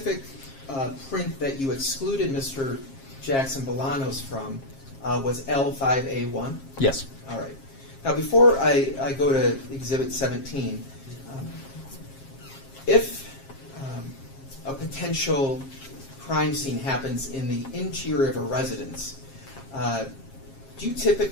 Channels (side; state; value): right; late; 7.4 ms